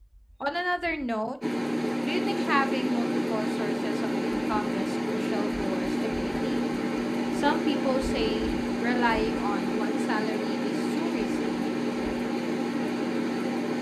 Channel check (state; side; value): identical; both; correlation 1.00